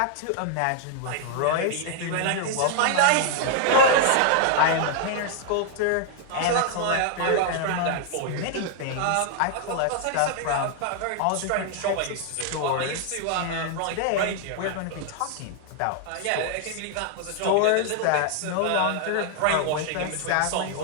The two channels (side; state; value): both; different; correlation 0.00